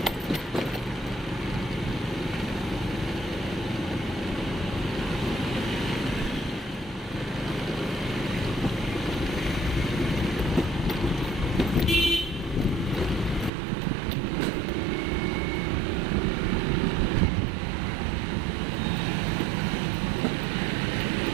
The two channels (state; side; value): drops out; left; at 13.5 s